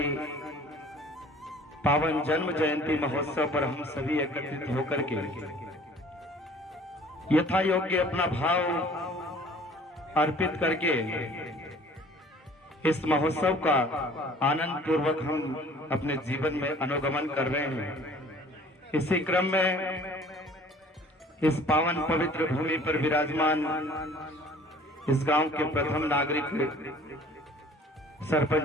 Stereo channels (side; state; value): both; normal; correlation 0.51